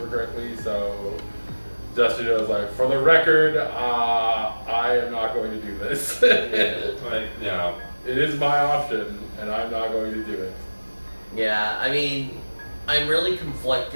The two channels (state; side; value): inverted; both; correlation -1.00